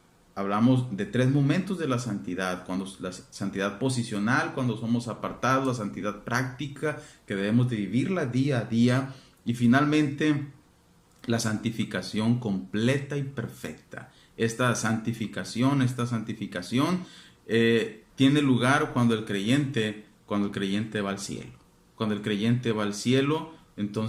Hablamos de 3 momentos de la santidad: la santidad posicional, cuando somos apartados; la santidad práctica, que debemos de vivirla día a día; y finalmente la santificación completa y perfecta. Esta santificación tiene lugar cuando el creyente va al cielo. Cuando el creyente va al cielo,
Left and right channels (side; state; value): both; identical; correlation 1.00